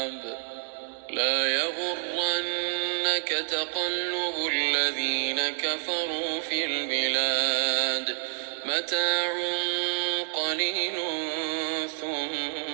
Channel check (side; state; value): left; silent; 59 dB below the other